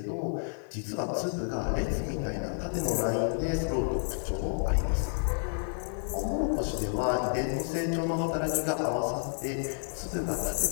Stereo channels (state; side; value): silent; right; digital silence